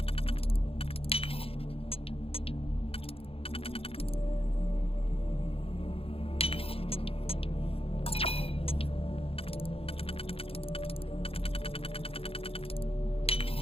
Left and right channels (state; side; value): late; right; 0.27 ms